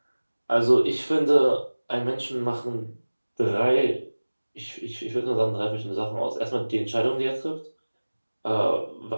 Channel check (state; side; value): inverted; both; correlation -1.00